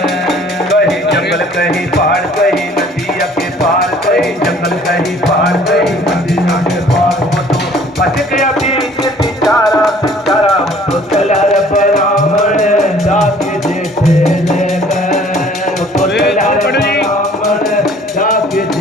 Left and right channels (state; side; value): normal; both; correlation 0.54